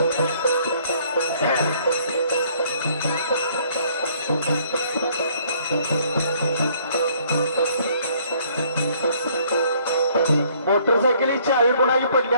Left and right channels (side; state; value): both; inverted; correlation -0.61